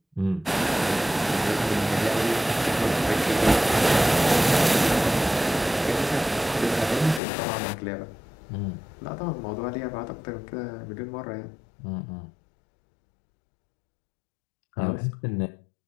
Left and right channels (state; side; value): drops out; right; at 7.2 s